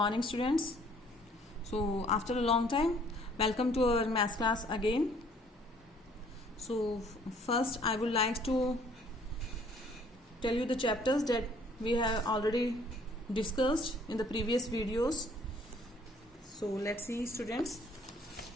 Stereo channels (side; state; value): both; normal; correlation 0.59